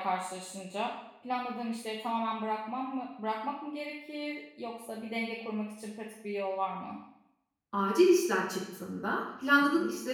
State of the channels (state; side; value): identical; both; correlation 1.00